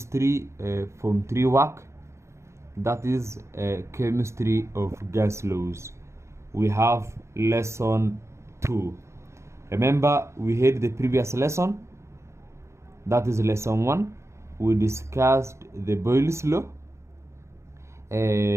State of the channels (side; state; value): left; late; 0.14 ms